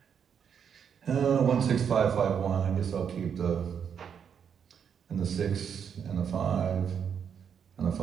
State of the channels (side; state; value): left; quieter; 7.6 dB